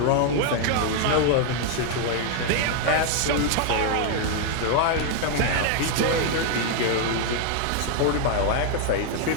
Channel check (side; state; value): both; different; correlation 0.00